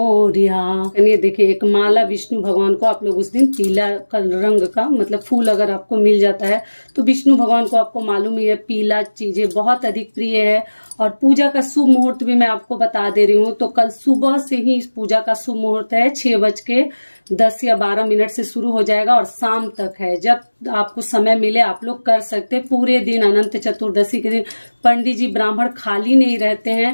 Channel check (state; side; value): inverted; both; correlation -1.00